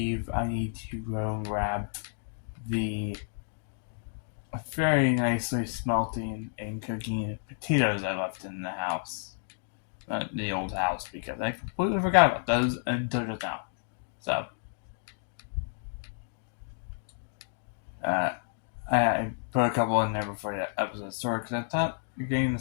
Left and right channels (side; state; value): right; silent; digital silence